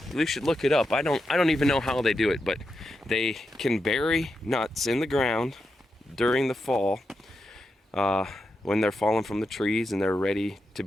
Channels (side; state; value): both; normal; correlation 0.86